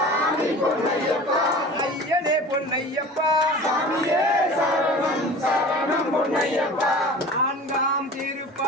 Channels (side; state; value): both; normal; correlation 0.39